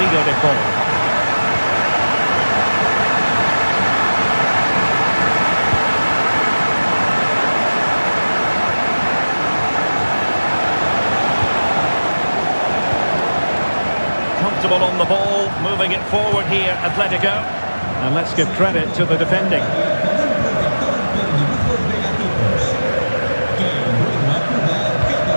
de Paul. Comfortable on the ball, moving it forward here, Atletico. And let's give credit to the defending.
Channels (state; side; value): inverted; both; correlation -1.00